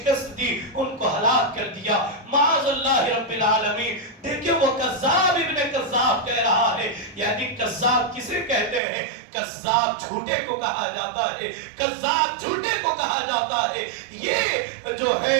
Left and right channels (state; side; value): drops out; left; at 8.8 s